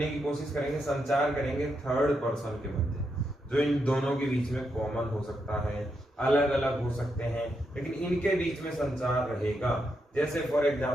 की कोशिश करेंगे, संचार करेंगे, थर्ड पर्सन के मध्य। जो इन दोनों के बीच में कॉमन हो सकता है, अलग अलग हो सकते हैं, लेकिन इनके बीच में संचार रहेगा। जैसे फॉर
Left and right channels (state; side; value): normal; both; correlation 0.82